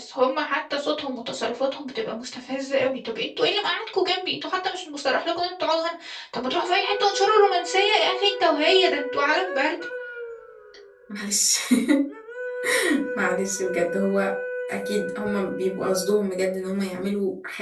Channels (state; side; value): identical; both; correlation 1.00